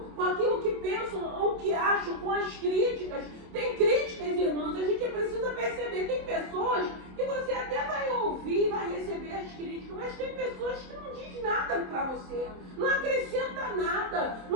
com aquilo que pensam ou que acham, com as críticas. Tem críticas, irmãos, a gente precisa perceber. Tem pessoas que você até vai ouvir, vai receber as críticas, mas tem pessoas que não diz nada para você, não acrescenta nada,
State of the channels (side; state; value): left; late; 27 ms